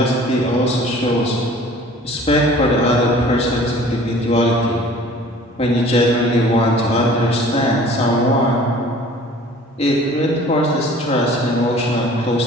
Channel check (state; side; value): normal; both; correlation 0.48